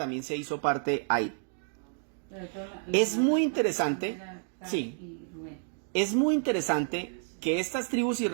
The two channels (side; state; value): left; silent; digital silence